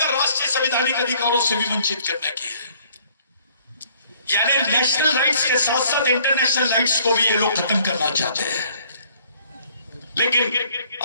संवैधानिक अधिकारों से भी वंचित करने की है। यानी नेशनल राइट्स के साथ साथ इंटरनेशनल राइट्स को भी ये लोग खत्म करना चाहते हैं। लेकिन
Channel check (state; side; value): inverted; both; correlation -0.59